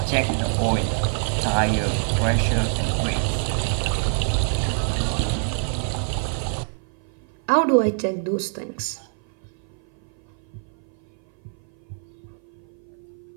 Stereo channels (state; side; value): silent; left; 57 dB below the other